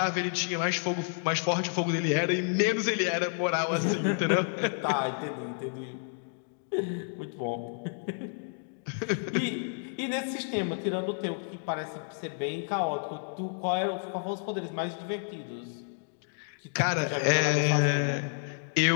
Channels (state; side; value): silent; right; digital silence